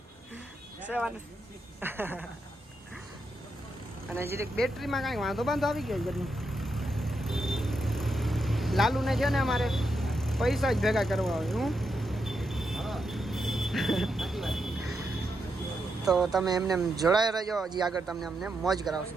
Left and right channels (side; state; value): both; normal; correlation 0.83